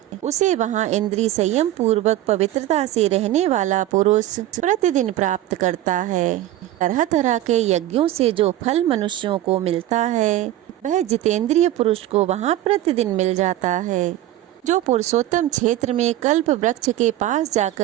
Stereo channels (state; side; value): quieter; left; 13.9 dB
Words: उसे वहाँ इंद्रिय संयम पूर्वक पवित्रता से रहने वाला पुरुष प्रतिदिन प्राप्त करता है। तरह तरह के यज्ञों से जो फल मनुष्यों को मिलता है, वह जितेंद्रिय पुरुष को वहाँ प्रतिदिन मिल जाता है। जो पुरुषोत्तम क्षेत्र में कल्प वृक्ष के पास